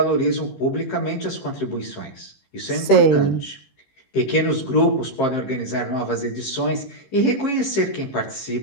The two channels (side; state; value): right; late; 15 ms